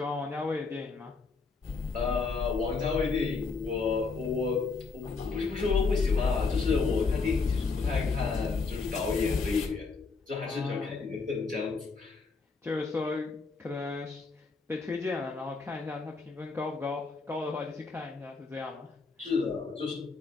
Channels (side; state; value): right; quieter; 4.4 dB